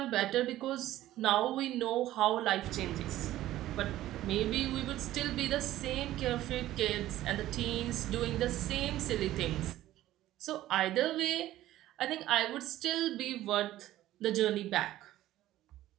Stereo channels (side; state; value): left; quieter; 14.5 dB